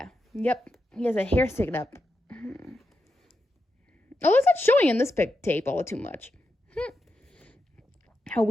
Yep, he has a hair sticking up. Oh, it's not showing in this tape all too much. How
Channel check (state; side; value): normal; both; correlation 0.86